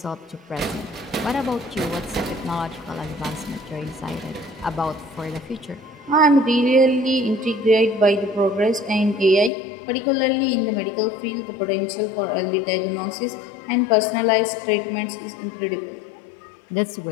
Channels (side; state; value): right; drops out; at 9.5 s